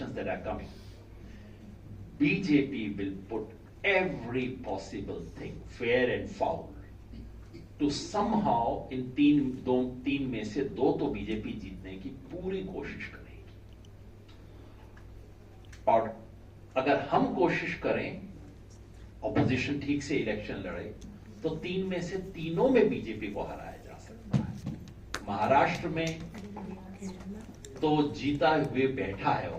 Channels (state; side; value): identical; both; correlation 1.00